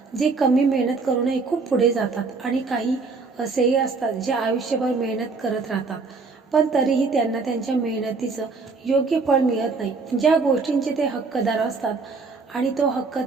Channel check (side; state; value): left; quieter; 4.3 dB